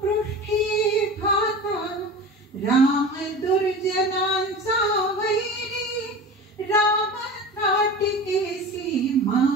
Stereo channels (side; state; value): both; normal; correlation 0.33